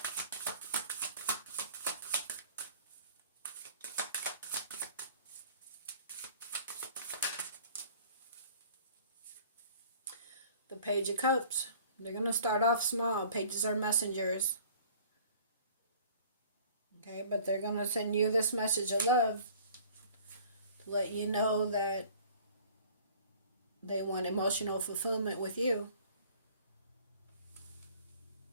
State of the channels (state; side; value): inverted; both; correlation -0.50